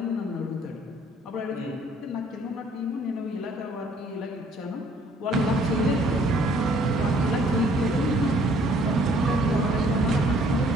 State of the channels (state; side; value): normal; both; correlation 0.61